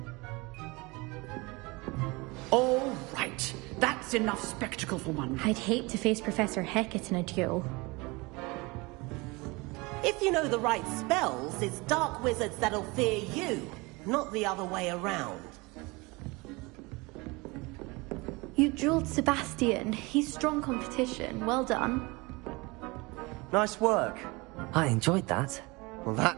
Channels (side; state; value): left; quieter; 25.0 dB